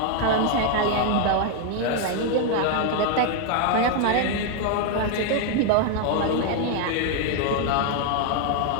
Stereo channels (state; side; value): different; both; correlation 0.00